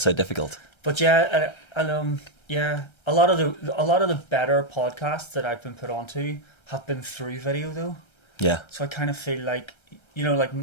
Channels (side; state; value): right; late; 1.3 ms